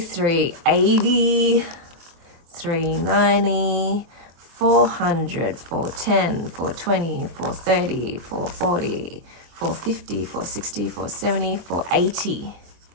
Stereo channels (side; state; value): left; late; 23 ms